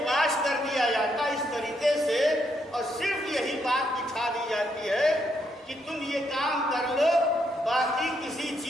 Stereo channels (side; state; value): both; normal; correlation 0.77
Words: واش کر دیا جاتا ہے اس طریقے سے، اور صرف یہی بات بٹھا دی جاتی ہے کہ تم یہ کام کر لو، باقی کسی